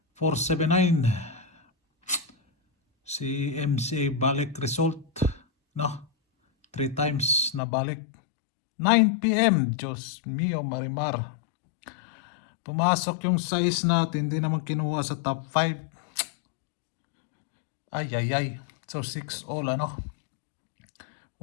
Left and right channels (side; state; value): right; drops out; at 7.6 s